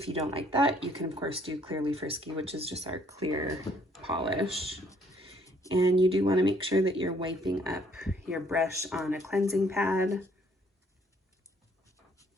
you don't like that, you can of course do Clearly Frisky, which is just our clear polish. And you do want to make sure that you're wiping up your brush on a cleansing pad.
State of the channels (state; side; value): normal; both; correlation 0.64